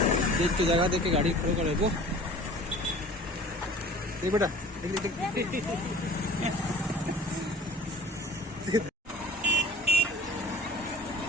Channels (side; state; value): both; normal; correlation 0.44